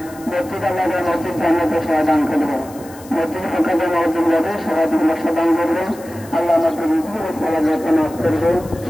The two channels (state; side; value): noise; left; hiss, 21 dB below the sound